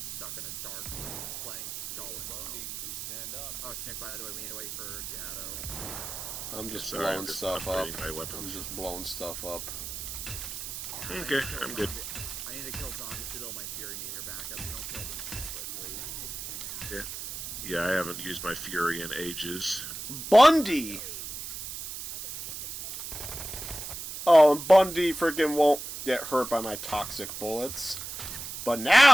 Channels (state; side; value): noise; right; hiss, 7 dB below the sound